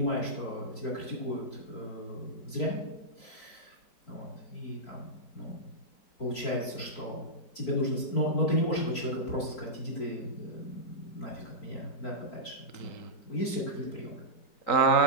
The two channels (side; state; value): right; late; 4.5 ms